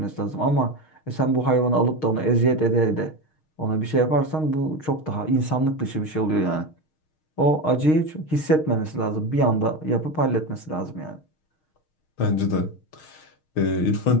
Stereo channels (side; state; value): right; late; 6.4 ms